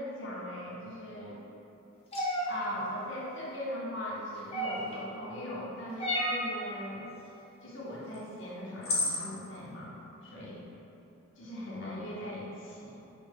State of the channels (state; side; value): normal; both; correlation 0.01